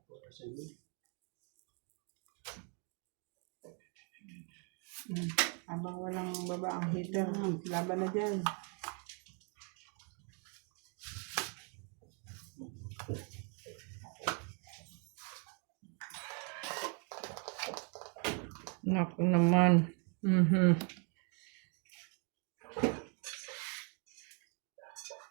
Habang walang baba ang heater, laban na dyan. Naku naman.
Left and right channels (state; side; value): quieter; left; 36.8 dB